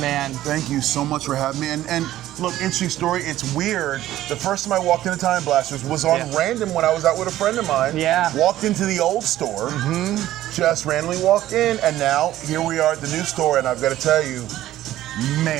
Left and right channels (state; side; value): quieter; left; 14.0 dB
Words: Thank you so much for having me. And look, interesting story. It's weird. The first time I walked into Time Blasters was on random when I was out with a friend of mine. Yeah. Walked into the old store. Just randomly walked in, and now here we are at the new store. And I've got to tell you,